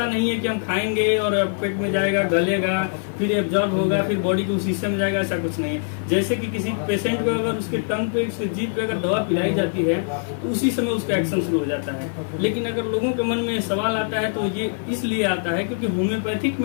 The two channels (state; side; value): silent; right; 55 dB below the other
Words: नहीं है कि हम खाएंगे और पेट में जाएगा, गलेगा, फिर एब्जॉर्ब होगा, फिर बॉडी के उस हिस्से में जाएगा, ऐसा कुछ नहीं है। जैसे कि किसी पेशेंट को अगर उसके टंग पे, उसके जीभ पे अगर दवा पिलाई जाती है तो उसी समय उसका एक्शन शुरू हो जाता है। लेकिन अगर लोगों के मन में सवाल आता है तो ये इसलिए आता है क्योंकि होम्योपैथिक